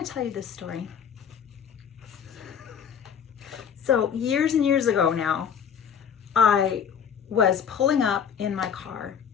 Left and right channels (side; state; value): right; quieter; 7.8 dB